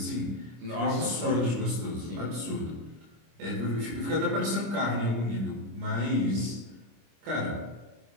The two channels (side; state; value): left; late; 25 ms